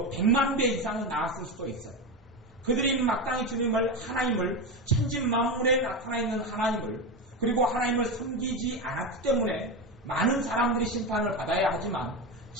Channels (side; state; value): both; normal; correlation 0.17